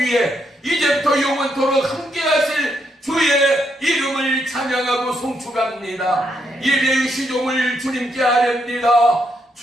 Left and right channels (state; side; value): normal; both; correlation 0.77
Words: 이제부터 영원토록 함께 하실 주의 이름을 찬양하고 송축합니다. 예배의 시종을 주님께 아렵니다.